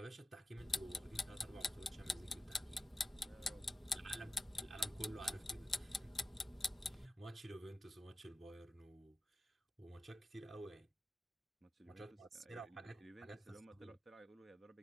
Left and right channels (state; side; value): normal; both; correlation 0.92